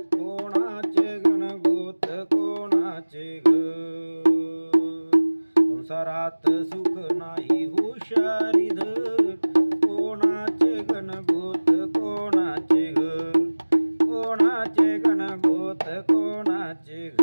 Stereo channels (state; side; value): inverted; both; correlation -1.00